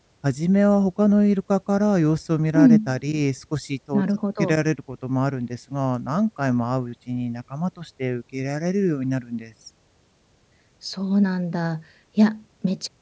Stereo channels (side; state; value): both; identical; correlation 1.00